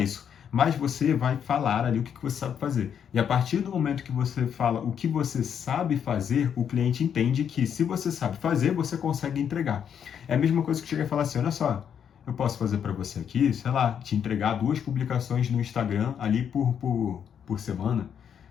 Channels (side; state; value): right; quieter; 8.2 dB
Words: mas você vai falar ali o que você sabe fazer. E a partir do momento que você fala o que você sabe fazer, o cliente entende que se você sabe fazer, você consegue entregar. É a mesma coisa que chega e fala assim, olha só, eu posso fazer para você aqui, sei lá, te entregar 2 publicações no Instagram ali por semana,